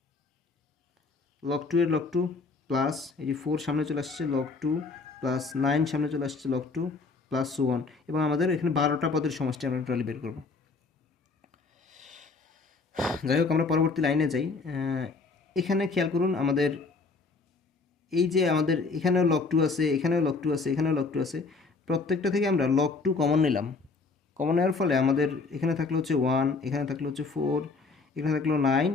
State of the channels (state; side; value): quieter; right; 4.2 dB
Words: লগ 2 এর লগ 2 প্লাস এই যে 4 সামনে চলে আসছে লগ 2 প্লাস 9 সামনে চলে আসছে লগ 2 প্লাস 1, এবং আমাদের এখানে 12টা পদের সমষ্টি আমরা টোটালি বের করব। যাই হোক, আমরা পরবর্তী লাইনে যাই। এখানে খেয়াল করুন, আমাদের এই যে আমাদের এখানেও লগ 2 আছে, এখানেও লগ 2 আছে, এখানেও লগ 2 আছে, প্রত্যেকটা থেকে আমরা লগ 2 কমন নিলাম। কমন নেওয়ার ফলে আমাদের এখানে থাকলো হচ্ছে 1, এখানে থাকলো হচ্ছে 4, এখানে থাকলো 9